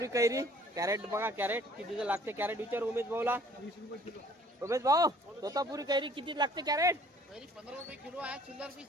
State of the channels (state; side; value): normal; both; correlation 0.55